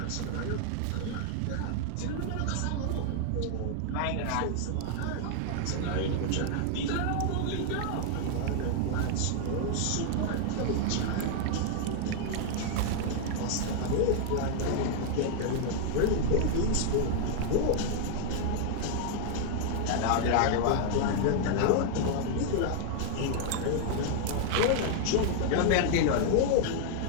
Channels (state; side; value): different; both; correlation 0.00